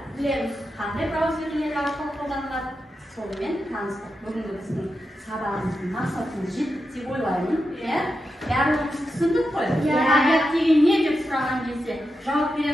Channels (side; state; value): both; normal; correlation 0.88